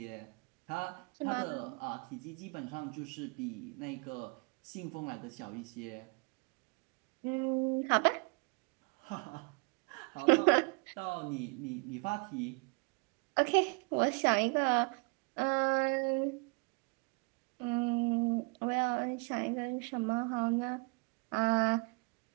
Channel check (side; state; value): left; quieter; 33.4 dB